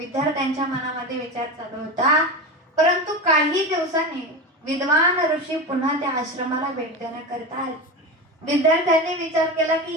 मनामध्ये विचार चालू होता. परंतु काही दिवसांनी विद्वान ऋषी पुन्हा त्या आश्रमाला भेट देण्याकरिता आले. विद्यार्थ्यांनी विचार केला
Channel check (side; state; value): both; normal; correlation 0.23